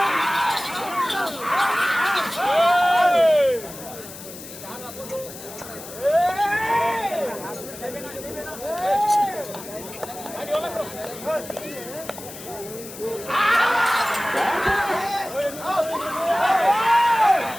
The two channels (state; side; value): noise; left; hiss, 14 dB below the sound